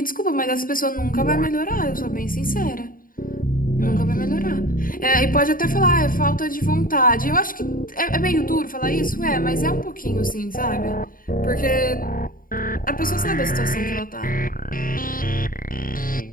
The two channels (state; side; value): late; right; 0.41 ms